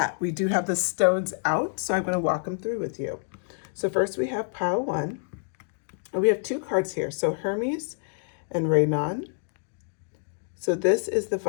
we do have the stones out, so I'm going to walk them through with you. So first we have pile one. And we have two cards here, so Hermes and Raynon. So this is the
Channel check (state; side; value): silent; right; digital silence